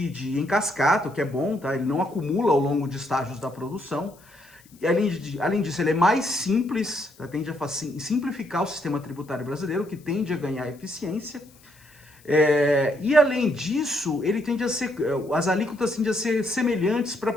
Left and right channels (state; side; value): noise; left; hiss, 28 dB below the sound